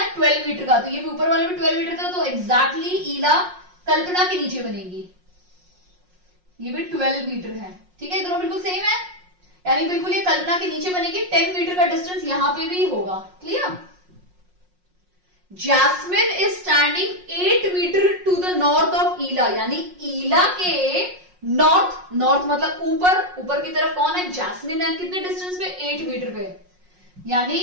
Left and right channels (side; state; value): left; late; 5.5 ms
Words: 12 मीटर का। तो ये भी ऊपर वाला भी 12 मीटर था, तो एग्जैक्टली ईला कल्पना के नीचे बनेगी, ये भी 12 मीटर है, ठीक है। दोनों बिल्कुल सेम है, यानी बिल्कुल ये कल्पना के नीचे बनेगी। 10 मीटर का डिस्टेंस यहां पे भी होगा। Clear. Jasmine is standing 8 metre to the north of Ila, यानी ईला के नॉर्थ, नॉर्थ मतलब ऊपर, ऊपर की तरफ कौन है, जैस्मिन है। कितने डिस्टेंस पे, 8 मीटर पे। यानी